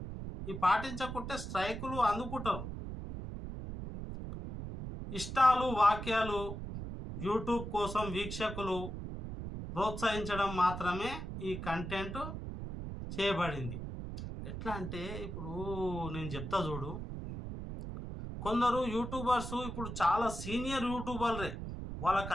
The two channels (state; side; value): noise; right; rumble, 7 dB below the sound